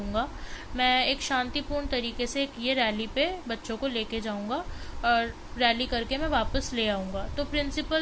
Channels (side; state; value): both; identical; correlation 1.00